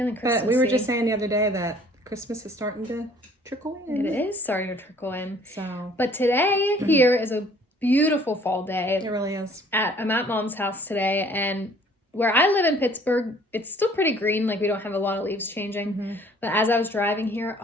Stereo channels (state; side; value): normal; both; correlation 0.55